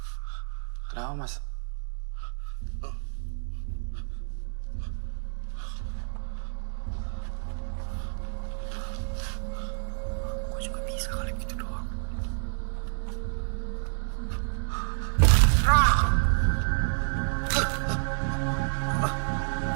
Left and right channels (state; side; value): silent; left; 58 dB below the other